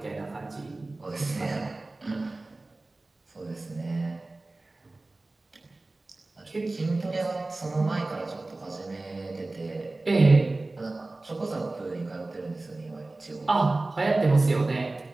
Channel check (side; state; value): left; quieter; 3.1 dB